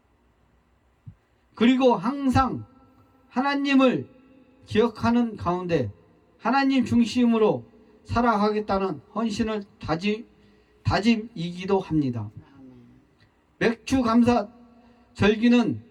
그리고 항상 하나님을 기억하는 가운데 하나님 중심으로 살아가겠다는 헌신을 다짐이기도 합니다. 아멘. 맥주 감사 절기는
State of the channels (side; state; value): both; identical; correlation 1.00